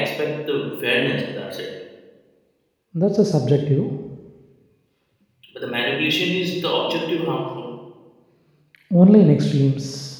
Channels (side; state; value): both; identical; correlation 1.00